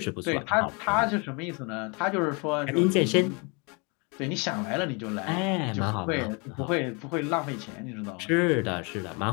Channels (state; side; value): quieter; right; 31.9 dB